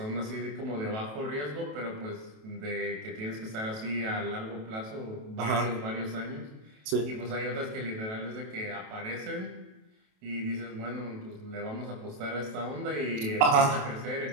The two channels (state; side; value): late; left; 28 ms